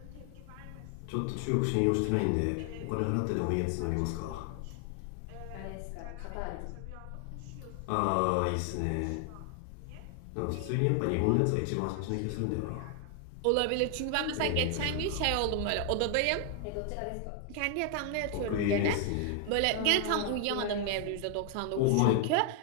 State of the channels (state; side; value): different; both; correlation 0.00